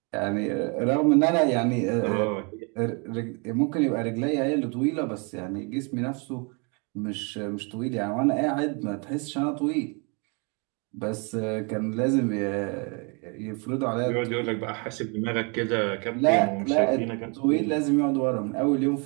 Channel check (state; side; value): quieter; left; 34.0 dB